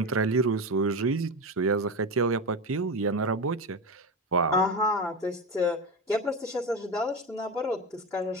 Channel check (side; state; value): both; normal; correlation 0.20